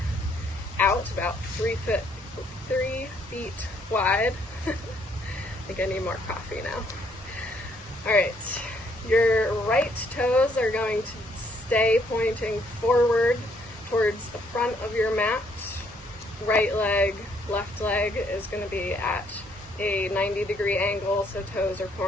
out about 3 feet wide. I think I need more coffee now. All right, your right toes are going to stay pointing forward towards the front of your mat. Right leg, left leg is going to be at a 90-degree angle, so toes are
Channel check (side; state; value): both; normal; correlation 0.68